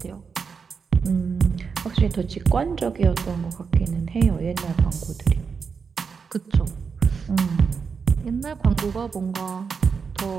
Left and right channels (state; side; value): quieter; left; 5.7 dB